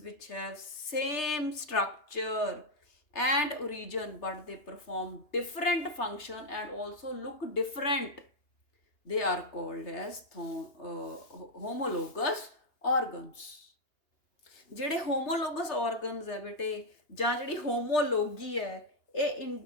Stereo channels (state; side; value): late; right; 2.8 ms